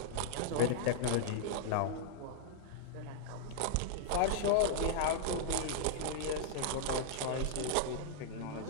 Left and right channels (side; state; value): both; different; correlation -0.02